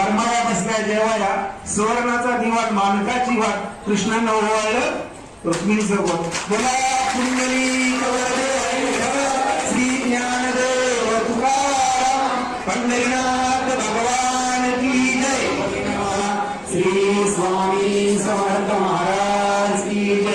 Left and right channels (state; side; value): identical; both; correlation 1.00